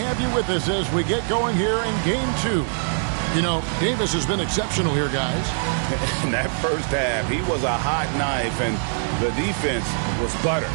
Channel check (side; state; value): left; silent; digital silence